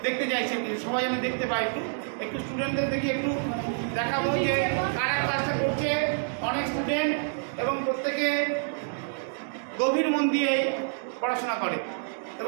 দেখতে চাইছি, সবাই আমি দেখতে পাই, একটু স্টুডেন্টদের দেখি, একটু দেখাবো যে কারা ক্লাসটা করছে। অনেক স্টুডেন্ট এবং প্রত্যেকে গভীর মন দিয়ে পড়াশোনা করে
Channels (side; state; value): left; silent; digital silence